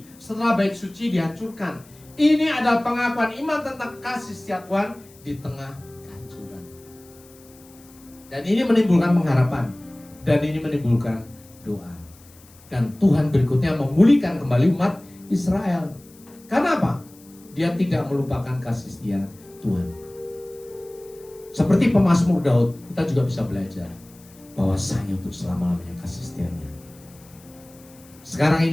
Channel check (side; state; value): left; noise; hiss, 25 dB below the sound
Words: setelah bait suci dihancurkan. Ini adalah pengakuan iman tentang kasih setia Tuhan di tengah kehancuran. Dan ini menimbulkan pengharapan, dan ini menimbulkan doa. Dan Tuhan berikutnya memulihkan kembali umat Israel. Karena apa? Dia tidak melupakan kasih setia Tuhan. Seperti pemazmur Daud, kita juga bisa belajar bahwasanya untuk selama-lamanya kasih setianya. Sekarang